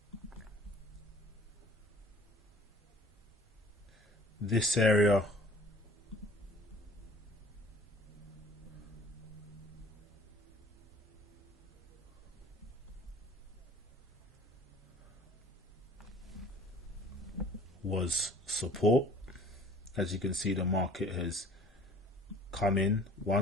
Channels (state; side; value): normal; both; correlation 0.50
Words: this area was support. As you can see, the market has come in